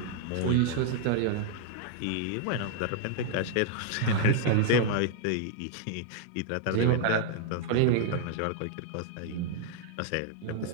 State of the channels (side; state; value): both; different; correlation -0.01